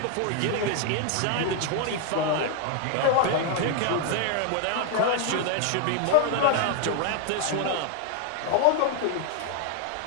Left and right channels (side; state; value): both; different; correlation 0.00